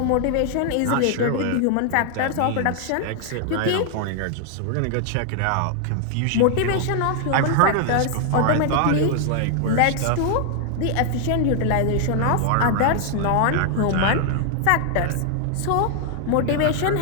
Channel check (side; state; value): both; different; correlation 0.00